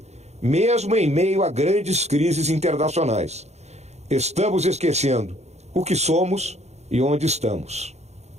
mesmo em meio a grandes crises internacionais. Estamos esquecendo o que somos e onde estamos.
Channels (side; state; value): left; late; 0.32 ms